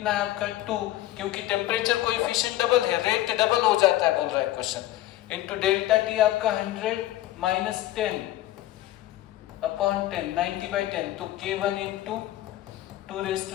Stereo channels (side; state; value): right; quieter; 15.0 dB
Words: है आपका 2, क्योंकि टेम्परेचर कोएफिशिएंट डबल है, रेट डबल हो जाता है बोल रहा है क्वेश्चन, इंटू डेल्टा टी आपका 100 माइनस 10 अपॉन 10, 90/10, तो K1 इंटू